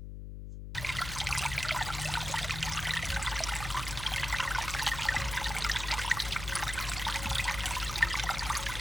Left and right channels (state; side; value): noise; left; hum, 8 dB below the sound